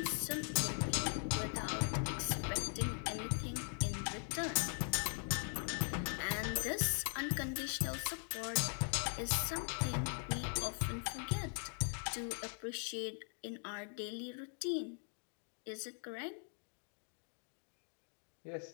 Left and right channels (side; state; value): right; silent; 51 dB below the other